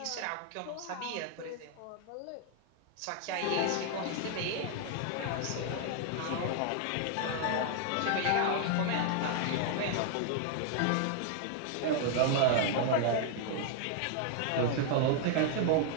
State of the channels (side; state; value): both; different; correlation 0.00